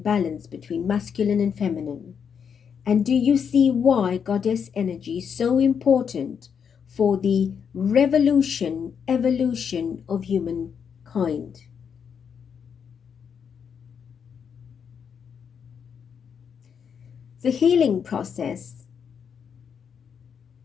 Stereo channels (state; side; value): quieter; right; 7.1 dB